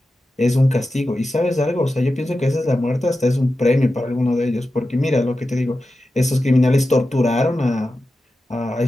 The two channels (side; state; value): both; normal; correlation 0.92